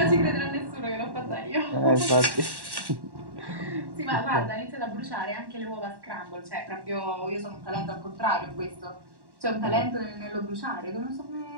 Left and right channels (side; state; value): left; late; 1.1 ms